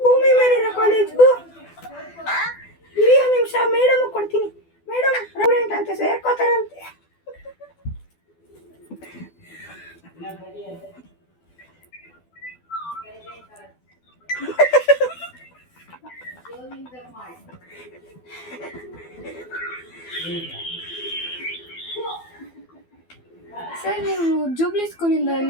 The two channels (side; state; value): right; late; 12 ms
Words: ಮೇಲಿನ ಕಾಲೇಜು. ಇರಿ ಒಂದು ನಿಮಿಷ, ಮೇಡಮ್ ಕೊಡ್ತೀನಿ. ಮೇಡಮ್ ಸ್ಟೂಡೆಂಟ್ ಅಂತ ಸೇರ್ಕೋತಾರಂತೆ. ಸರ್, ನೀವು ಜೂಬ್ಲಿ ಸ್ಕೂಲಿಂದ